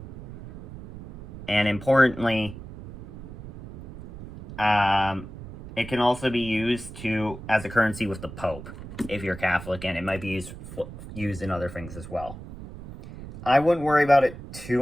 and importantly, it can also be used as a currency with the Pope, if you're Catholic, and it might be used in other things as well. I wouldn't worry about it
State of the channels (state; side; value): noise; right; rumble, 14 dB below the sound